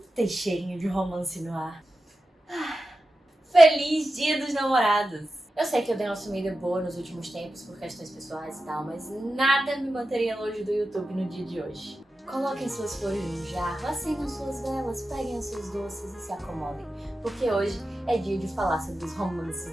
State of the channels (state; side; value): normal; both; correlation 0.92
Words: Tem cheirinho de romance no ar. Feliz Dia dos Namorados! Eu sei que eu dei uma sumida boa nos últimos tempos por questões pessoais e tal, mas nada me manteria longe do YouTube no dia de hoje. Coloquem suas flores no jarro, acendam suas velas, peguem os seus doces e se acomodem, porque hoje é dia de falar sobre os romances